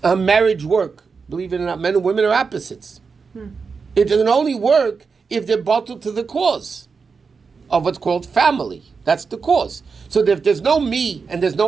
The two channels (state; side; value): quieter; left; 5.1 dB